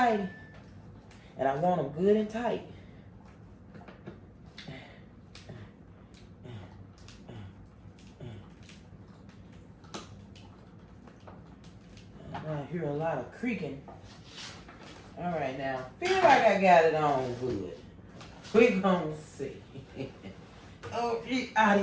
And I want them good and tight. I hear a lot of creaking. All right, now, feel like I got it on good. We're gonna see. Oh, these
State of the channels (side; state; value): both; identical; correlation 1.00